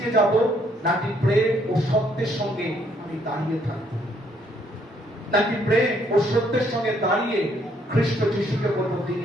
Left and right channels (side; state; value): both; normal; correlation 0.68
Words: যাব, নাকি প্রেম ও সত্যের সঙ্গে আমি দাঁড়িয়ে থাকবো? নাকি প্রেম ও সত্যের সঙ্গে দাঁড়িয়ে খ্রিস্ট যিশুকে বলবো তিনি